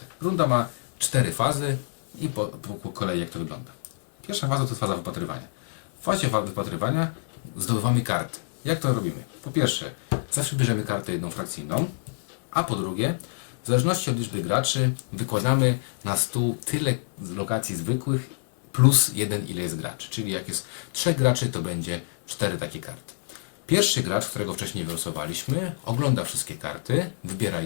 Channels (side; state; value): right; silent; digital silence